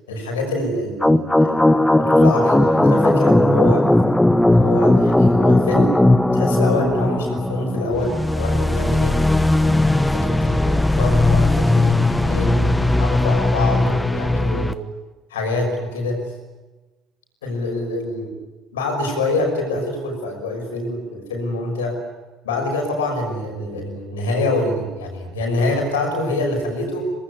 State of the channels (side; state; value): both; normal; correlation 0.84